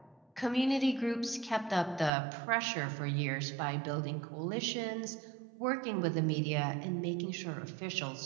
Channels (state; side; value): drops out; left; at 2.1 s